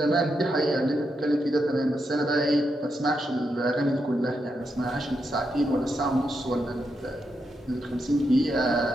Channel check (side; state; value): both; normal; correlation 0.83